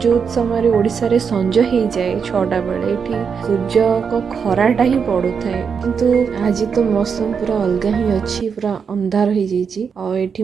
समय ओडिसा रे संजय हे जाए 6टा बेले एठी सूर्य को खराटा ही पड़ू थाए। किंतु आज तो मौसम पूरा अलग ही अच्छी, पूरा अंधार हो जाइए। और एठी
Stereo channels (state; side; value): quieter; left; 6.3 dB